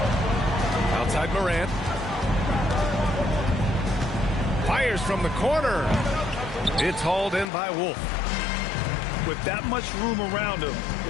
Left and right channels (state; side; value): drops out; right; at 7.5 s